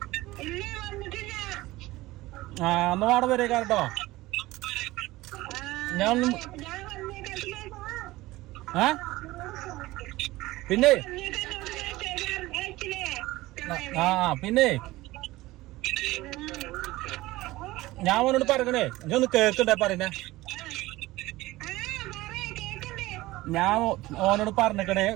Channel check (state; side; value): quieter; left; 18.6 dB